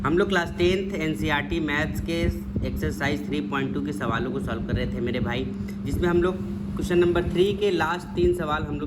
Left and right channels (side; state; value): both; identical; correlation 1.00